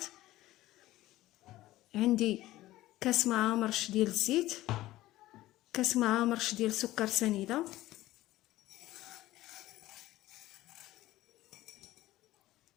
عندي كاس مع مرش ديال الزيت، كاس مع مرش ديال سكر سنيده،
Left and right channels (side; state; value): right; quieter; 16.2 dB